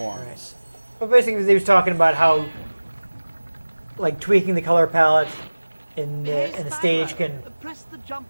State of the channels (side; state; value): both; inverted; correlation -1.00